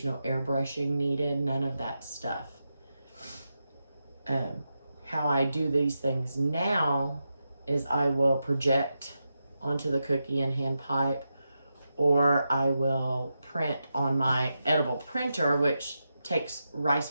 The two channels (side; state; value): both; inverted; correlation -0.88